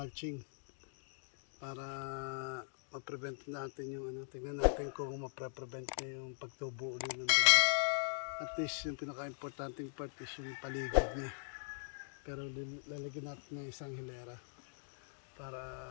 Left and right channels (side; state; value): right; silent; digital silence